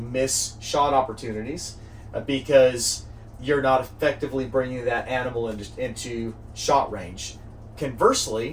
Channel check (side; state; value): both; identical; correlation 1.00